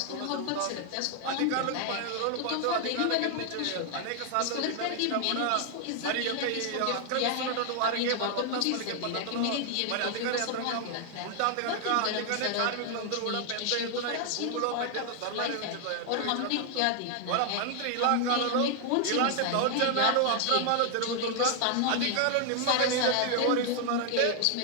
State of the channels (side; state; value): both; different; correlation 0.00